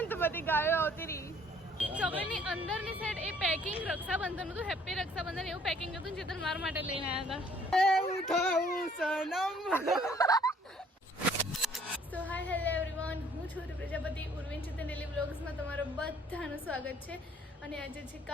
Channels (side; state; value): both; normal; correlation 0.59